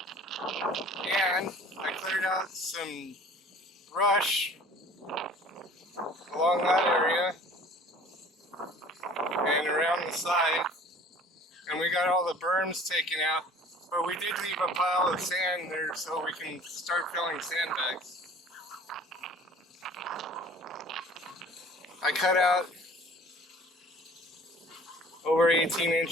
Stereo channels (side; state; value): both; normal; correlation 0.49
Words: and I cleared out some brush along that area and around the side, and we got all the berms taken out. But we did leave a pile of sand there so we can start filling sandbags. I cut out over 18